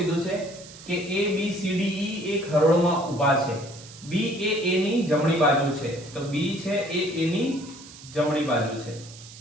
છે કે A B C D E એક હરોળમાં ઊભા છે. B એ A ની જમણી બાજુ છે, તો B છે એ A ની જમણી બાજુ છે.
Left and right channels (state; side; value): noise; right; hiss, 18 dB below the sound